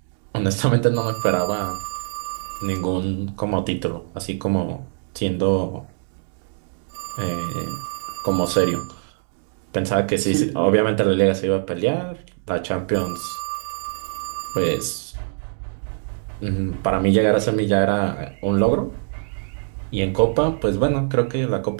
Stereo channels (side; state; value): left; silent; digital silence